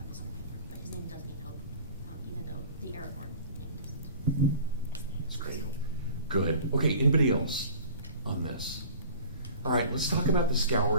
this name, but his name does mean hope, even though the Aragorn name doesn't. That's great. Good. Okay, anybody else on this? All right, let's talk about the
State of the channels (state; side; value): inverted; both; correlation -0.43